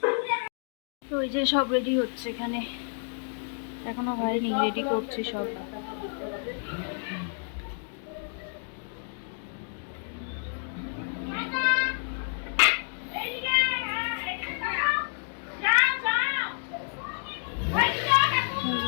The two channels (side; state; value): right; silent; 58 dB below the other